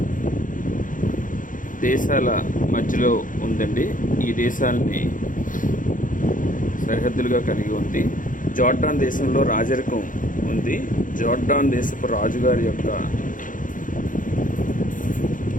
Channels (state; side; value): late; right; 0.38 ms